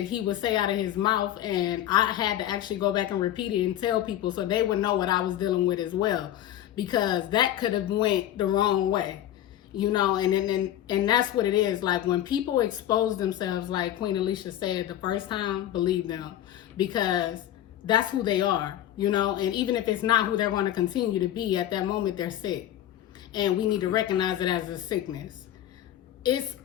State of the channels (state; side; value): quieter; right; 12.2 dB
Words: he would say out of his mouth, and I had to actually go back and repeat it and tell people so they would know what I was dealing with as well, because that could have went the wrong way, you know. And that's what it is. Like, when people expose themselves, like Queen Alicia said the first time, believe them, because that's who they are, you know. And even if it's not who they're going to continue to be, at that moment they're sick, and we need to recognize it as a sickness. It's